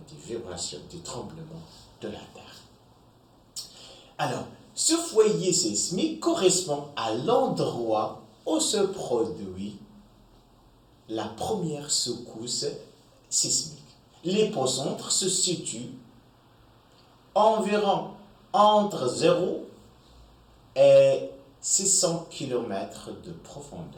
vibrations, des tremblements de la Terre. Alors, ce foyer sismique correspond à l'endroit où se produit la première secousse sismique. L'épicentre se situe environ entre 0 et 600 km de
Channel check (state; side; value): identical; both; correlation 1.00